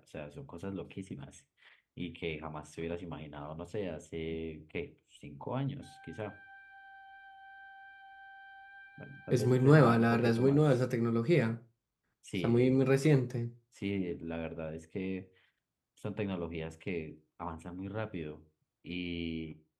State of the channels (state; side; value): identical; both; correlation 1.00